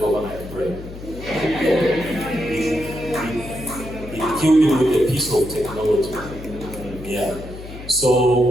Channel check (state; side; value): noise; left; hum, 13 dB below the sound